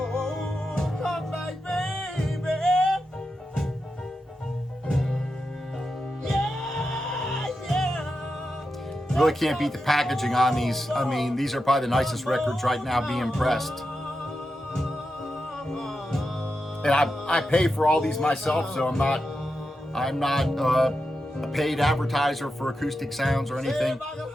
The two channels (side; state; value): both; normal; correlation 0.89